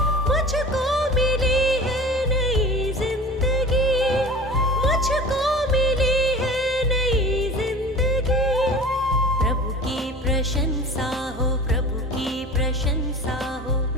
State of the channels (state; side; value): normal; both; correlation 0.38